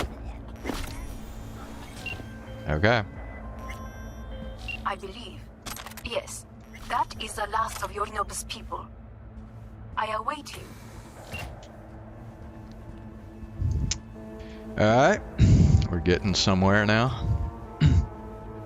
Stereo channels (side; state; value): both; identical; correlation 1.00